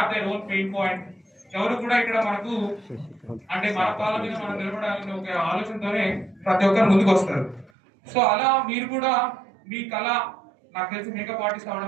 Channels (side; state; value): left; drops out; at 7.7 s